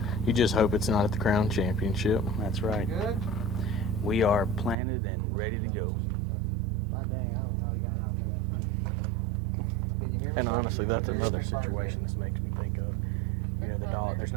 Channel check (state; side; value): drops out; left; at 4.8 s